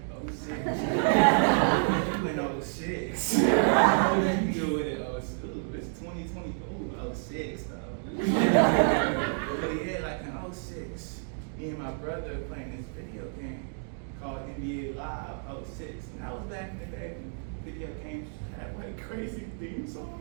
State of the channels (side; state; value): left; silent; 58 dB below the other